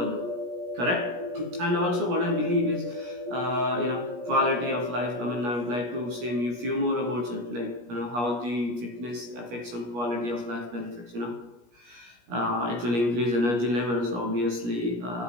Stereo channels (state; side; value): late; left; 17 ms